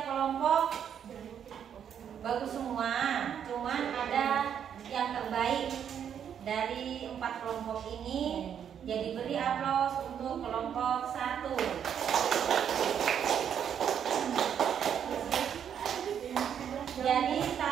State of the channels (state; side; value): quieter; left; 8.6 dB